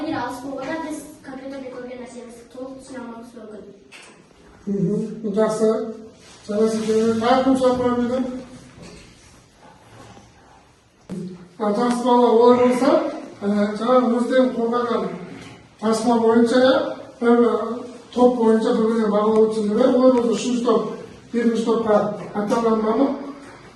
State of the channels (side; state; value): both; identical; correlation 1.00